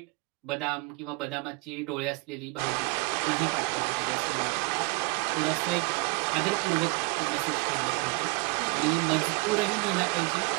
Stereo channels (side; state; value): left; quieter; 27.6 dB